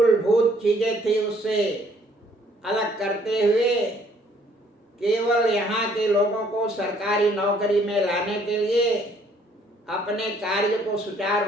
चीजें थी उससे अलग करते हुए केवल यहाँ के लोगों को सरकारी नौकरी में लाने के लिए, अपने कार्य को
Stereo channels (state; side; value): normal; both; correlation 0.63